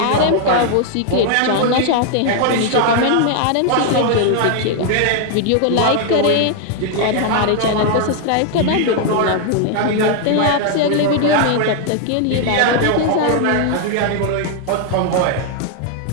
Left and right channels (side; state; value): both; different; correlation 0.00